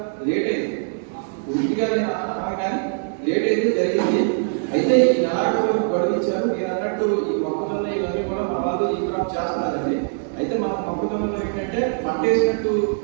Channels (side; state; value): left; silent; digital silence